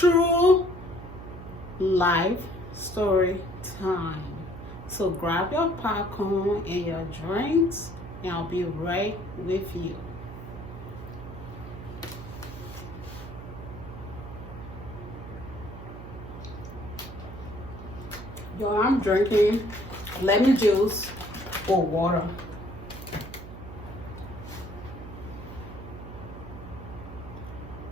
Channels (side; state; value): right; noise; hum, 12 dB below the sound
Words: life story time. So grab your popcorn and your drinks, and I'll be right with you. Yo, I'm drinking lemon juice or water.